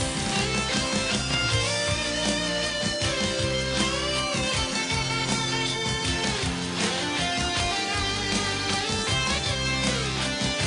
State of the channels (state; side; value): identical; both; correlation 1.00